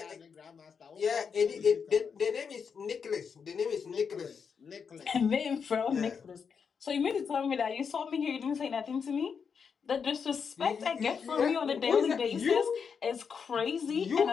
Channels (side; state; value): right; quieter; 6.3 dB